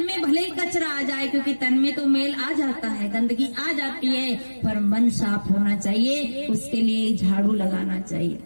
में भले ही कचरा आ जाए, क्योंकि तन में तो मेल आ जाता है, गंदगी आ जाती है, पर मन साफ होना चाहिए, उसके लिए झाड़ू लगाना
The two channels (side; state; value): both; inverted; correlation -1.00